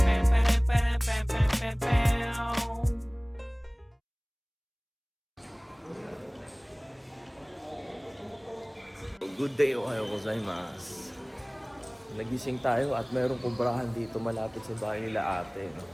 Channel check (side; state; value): both; identical; correlation 1.00